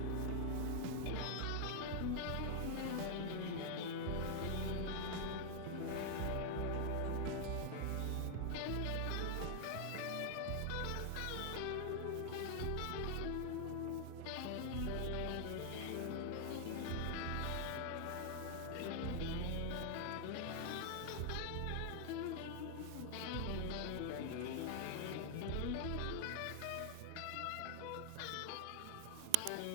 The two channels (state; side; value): different; both; correlation 0.00